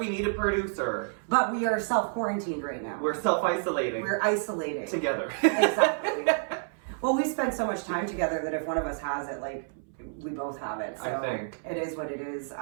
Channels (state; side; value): silent; left; 58 dB below the other